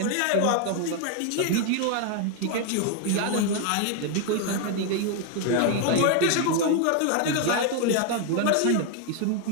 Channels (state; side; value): different; both; correlation 0.00